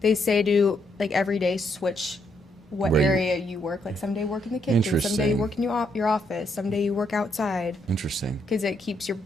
they say to like every day switch what Where you- area you work. Like someday work in the kitchen, someday you Interesting. work in your office, someday you work outside Interesting. because it keeps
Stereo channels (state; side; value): normal; both; correlation 0.75